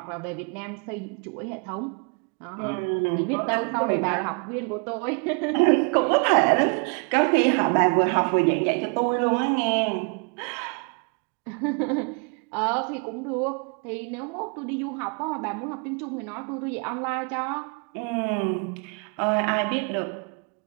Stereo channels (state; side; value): quieter; left; 34.9 dB